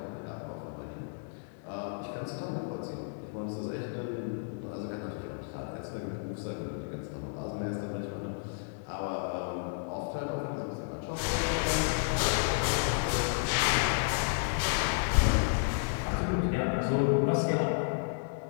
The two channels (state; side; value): silent; right; digital silence